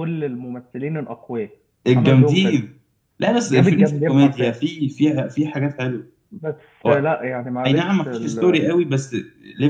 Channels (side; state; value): both; identical; correlation 1.00